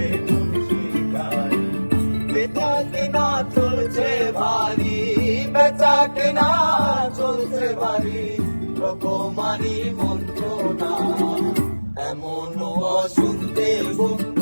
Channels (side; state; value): both; inverted; correlation -1.00